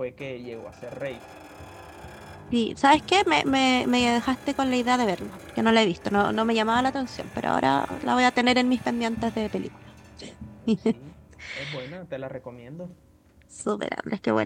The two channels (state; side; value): identical; both; correlation 1.00